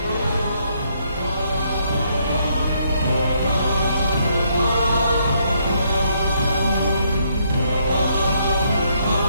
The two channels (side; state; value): both; inverted; correlation -0.72